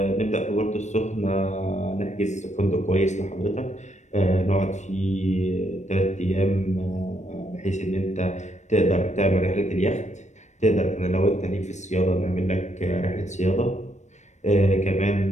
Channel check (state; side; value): late; right; 0.34 ms